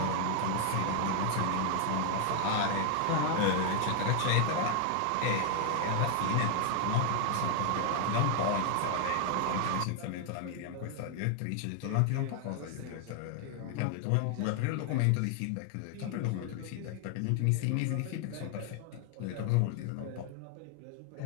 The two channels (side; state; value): both; different; correlation 0.00